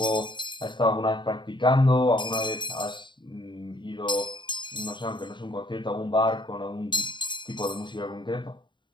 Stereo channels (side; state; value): right; late; 0.23 ms